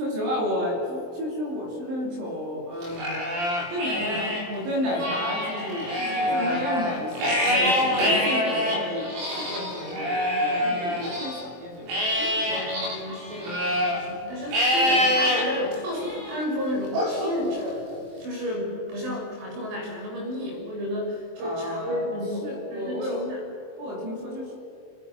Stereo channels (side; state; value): left; late; 23 ms